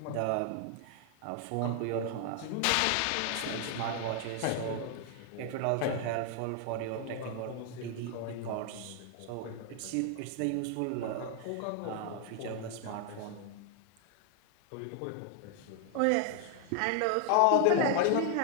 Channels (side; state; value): both; different; correlation 0.00